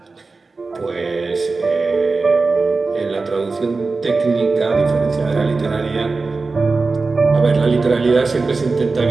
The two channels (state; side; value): quieter; left; 3.9 dB